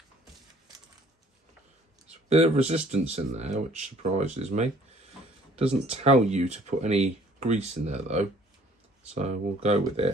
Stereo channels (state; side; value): normal; both; correlation 0.56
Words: a bit of resistance in there, which surprises me. Doesn't tell you to put any grease in there though, so we'll go with